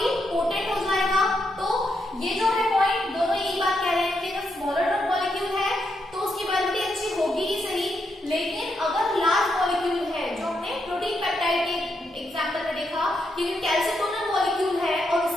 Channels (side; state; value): both; normal; correlation 0.81